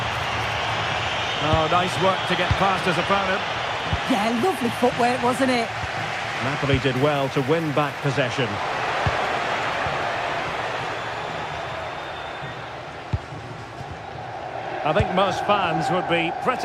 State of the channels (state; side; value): identical; both; correlation 1.00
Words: Oh, nice work to get past his opponent. Yeah, lovely footwork, wasn't it? Napoli did well to win back possession. I think most fans would be